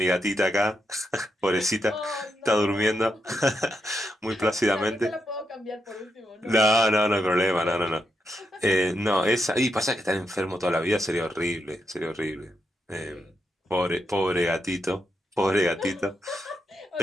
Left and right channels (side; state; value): both; normal; correlation 0.82